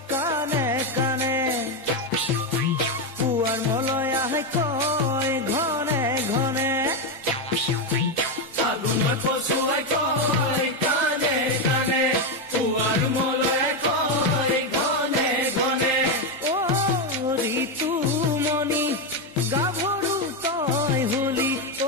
কানে কানে পুৱাৰ মলয়াহে কয় ঘনে ঘনে ফাগুনৰ পছুৱাই কয় কানে কানে পুৱাৰ মলয়াহে কয় ঘনে ঘনে ও ঋতুমণি গাভৰু তই হলি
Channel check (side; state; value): both; normal; correlation 0.08